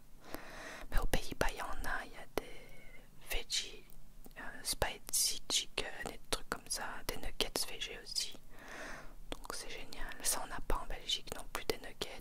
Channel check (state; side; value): identical; both; correlation 1.00